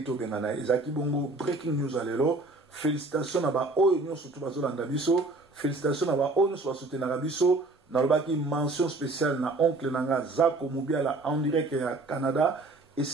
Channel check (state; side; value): quieter; left; 3.1 dB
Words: Benana. Ezaki Bongo, breaking news à l'élo. Félicitations à ba Oyo, surtout Bazolanda Bisso. Félicitations à ba Oyo, sur soutenir Bisso. Nalobaki mention spéciale na oncle Nanga Zako Mubiala en direct à Canada. Et